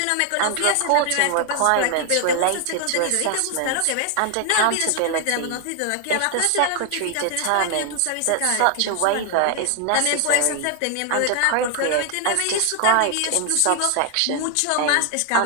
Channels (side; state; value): both; different; correlation 0.00